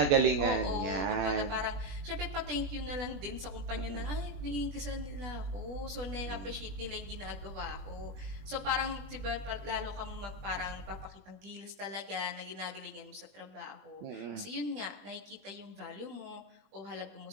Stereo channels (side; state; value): left; late; 20 ms